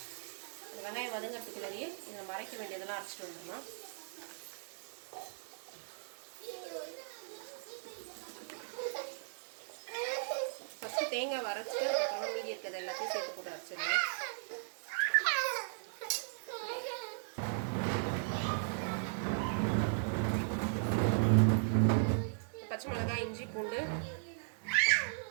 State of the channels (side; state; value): left; silent; digital silence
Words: அந்த வெங்காயம் வதங்கிறதுக்குள்ளேயே இதை நம்ம அரைக்க வேண்டியதெல்லாம் அரைச்சிட்டு வந்துடலாம். ஃபஸ்ட்டு தேங்காய் வரைச்சிட்டு அதுக்கப்புறம் மீதி இருக்கிறது எல்லாத்தையும் சேர்த்து போட்டு அரைச்சிடலாம். பச்சை மிளகாய், இஞ்சி, பூண்டு,